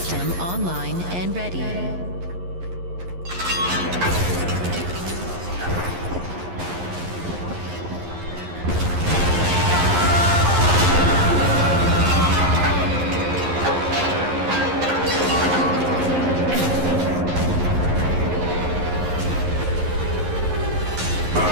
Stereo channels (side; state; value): left; late; 11 ms